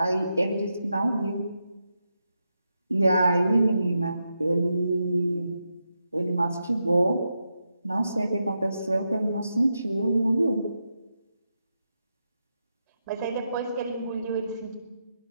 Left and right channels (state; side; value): inverted; both; correlation -0.86